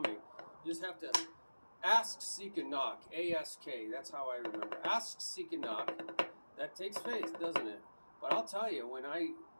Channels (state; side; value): inverted; both; correlation -1.00